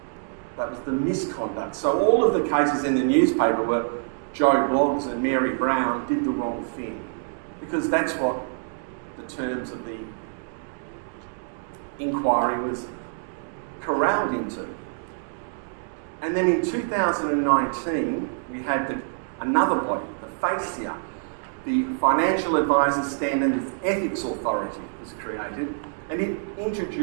That was the misconduct. So all of the cases in the newspaper were Joe Bloggs and Mary Brown did the wrong thing, because that's what the terms of the inquiry was corralled into. And then in 2019, we had another body, the FASIA, the Financial Advisors Standards Ethics Authority was created, and it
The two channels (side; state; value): left; silent; digital silence